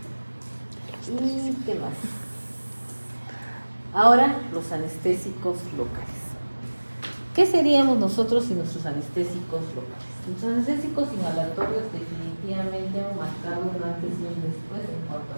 ¿Y qué más? Ahora, los anestésicos locales. ¿Qué seríamos nosotros sin nuestros anestésicos locales? Los anestésicos inhalatorios definitivamente han marcado un antes y un después en cuanto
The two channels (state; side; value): inverted; both; correlation -1.00